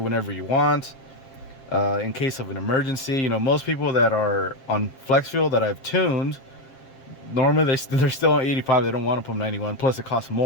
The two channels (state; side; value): late; right; 7.5 ms